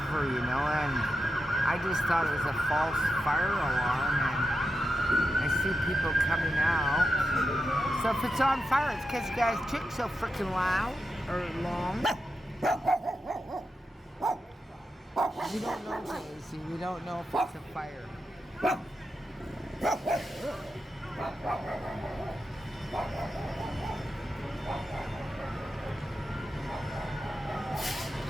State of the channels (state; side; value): normal; both; correlation 0.88